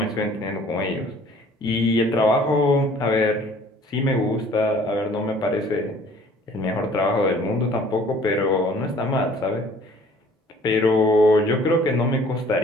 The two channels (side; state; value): both; normal; correlation 0.53